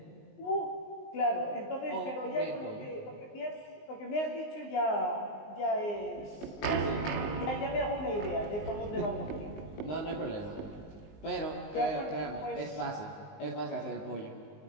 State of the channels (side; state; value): right; late; 19 ms